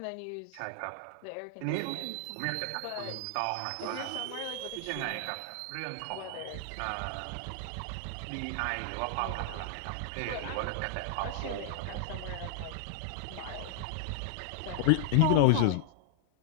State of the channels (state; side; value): different; both; correlation 0.00